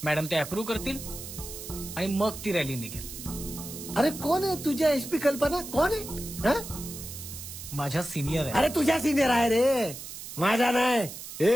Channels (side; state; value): right; noise; hiss, 11 dB below the sound